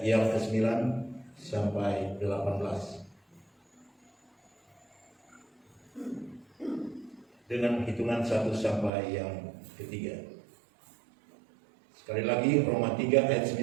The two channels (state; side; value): drops out; left; at 8.9 s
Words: yang ke-9 sampai 18. Dengan hitungan 1 sampai yang ketiga. Sekali lagi Roma 3 ayat